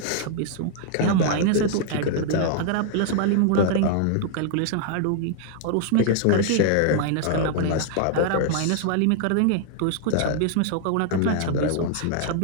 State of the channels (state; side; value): different; both; correlation 0.00